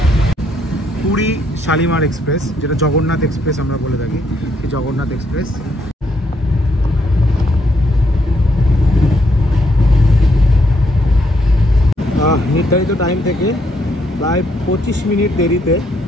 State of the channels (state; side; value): normal; both; correlation 0.73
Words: Puri Shalimar express, যেটা জগন্নাথ এক্সপ্রেস আমরা বলে থাকি, এই জগন্নাথ এক্সপ্রেস। নির্ধারিত টাইম থেকে প্রায় 25 মিনিট দেরিতে